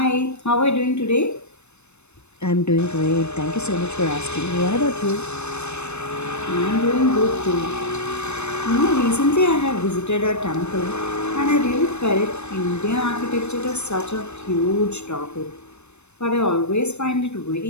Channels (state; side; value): late; right; 0.81 ms